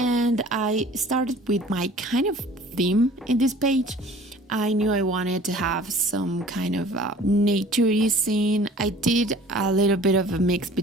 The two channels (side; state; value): both; normal; correlation 0.48